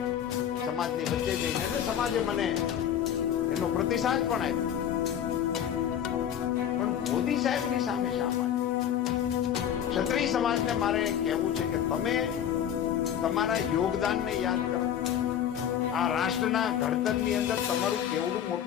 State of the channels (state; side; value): quieter; right; 9.6 dB